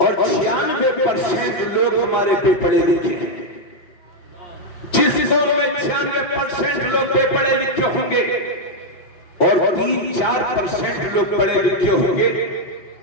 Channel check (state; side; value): late; right; 5.7 ms